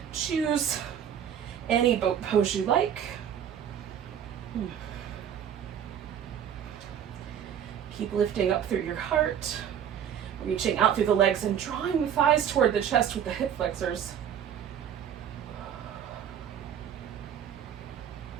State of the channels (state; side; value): quieter; left; 9.0 dB